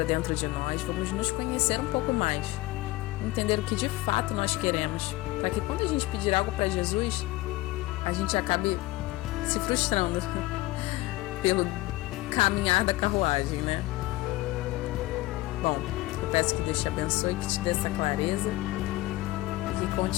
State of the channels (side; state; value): right; quieter; 18.6 dB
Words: dentro de nós, vamos nos conhecer um pouco mais, entender o que de fato nós queremos, para que quando a gente pedir algo para Jesus, a gente acabe se frustrando pelo caminhar da carruagem, né? Bom, eu peço que Deus te abençoe, que te dê essa clareza e que